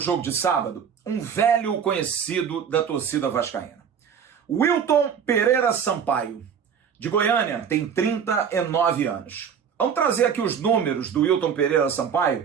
de sábado um velho conhecido da torcida vascaína. Wilton Pereira Sampaio, de Goiânia, tem 39 anos. Vamos trazer aqui os números do Wilton Pereira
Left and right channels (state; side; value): quieter; left; 7.5 dB